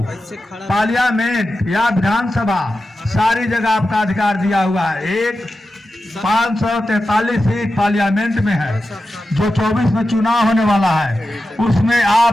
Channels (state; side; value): normal; both; correlation 0.91